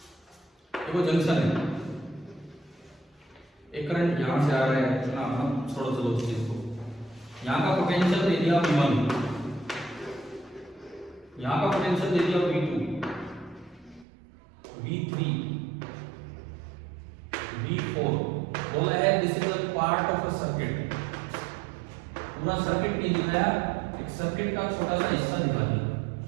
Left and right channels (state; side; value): drops out; left; at 14.1 s